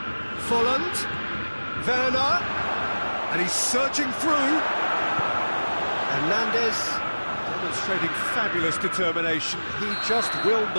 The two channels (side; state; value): both; inverted; correlation -1.00